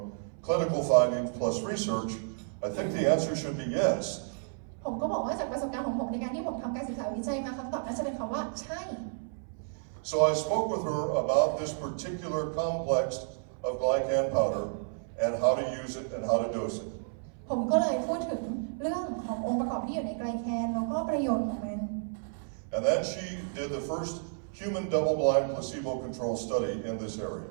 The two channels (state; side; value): silent; left; 57 dB below the other